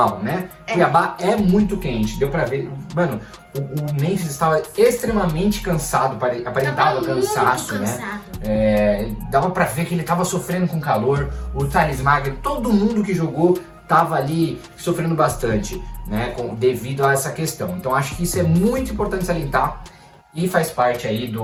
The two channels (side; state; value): both; identical; correlation 1.00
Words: né? Cuiabá é muito quente, deu pra ver. Mano, o Memphis estava extremamente cansado, aparentava cansaço, né? Dava pra ver que ele tava sofrendo com calor. O Thales Magno, todo mundo que jogou tava ali sofrendo bastante, né? Devido a essa questão. Então acho que isso é muito importante salientar. E faz parte aí